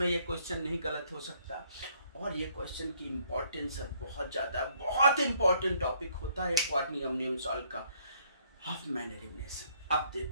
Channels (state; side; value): inverted; both; correlation -0.66